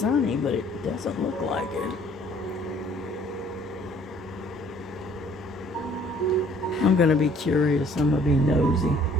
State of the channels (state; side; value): normal; both; correlation 0.58